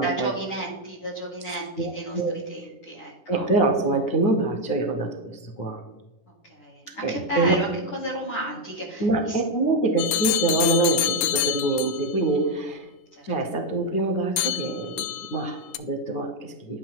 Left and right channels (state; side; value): late; right; 11 ms